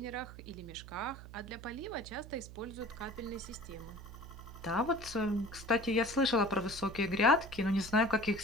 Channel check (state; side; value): noise; right; hum, 14 dB below the sound